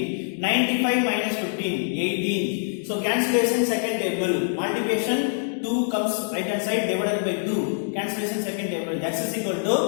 95 minus 15, 18. So cancellation second table, multiplication 2 comes right hand side divided by 2. Cancellation second table, x is equal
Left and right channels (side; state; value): right; silent; 62 dB below the other